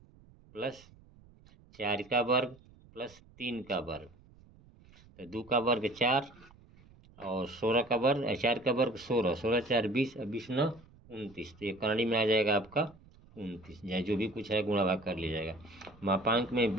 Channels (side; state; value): right; noise; rumble, 25 dB below the sound